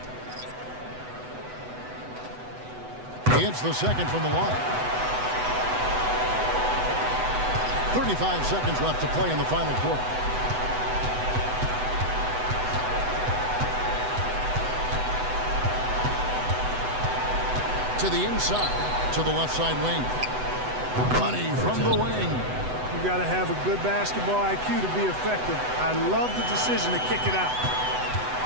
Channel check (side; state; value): left; late; 8.0 ms